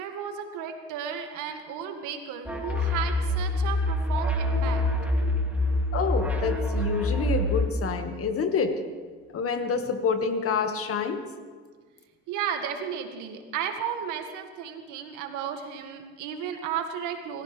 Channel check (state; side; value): normal; both; correlation 0.32